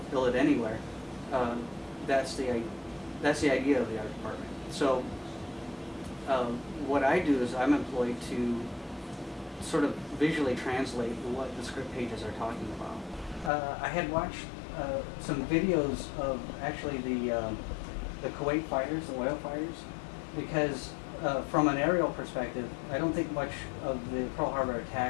build it anywhere, that's the idea of the art department. So what I do is I'm employed to sort of visually translate what the script pages are talking about. I had watched some videos of actually the Kuwait fighters, the oil fighters, because from an aerial perspective, I don't think much of the Pearl Harbor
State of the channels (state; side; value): drops out; right; at 13.5 s